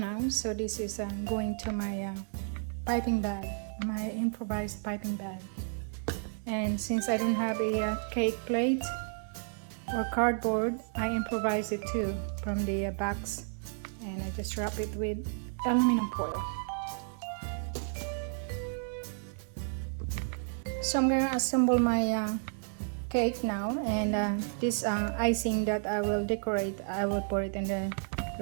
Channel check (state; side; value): silent; left; 56 dB below the other